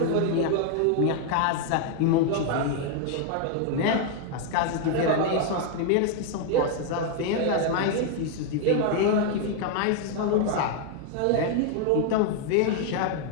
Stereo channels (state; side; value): different; both; correlation 0.00